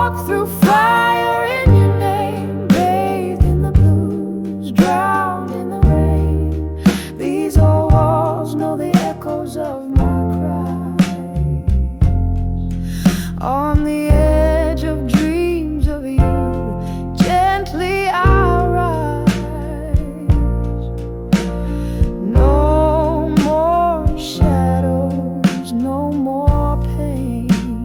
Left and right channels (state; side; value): identical; both; correlation 1.00